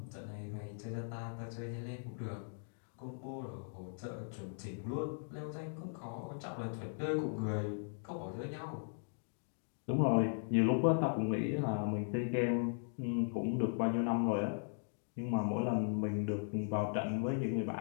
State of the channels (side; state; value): right; silent; digital silence